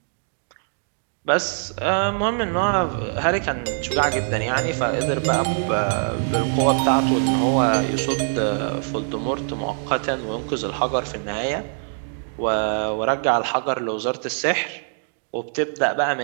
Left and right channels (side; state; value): left; silent; digital silence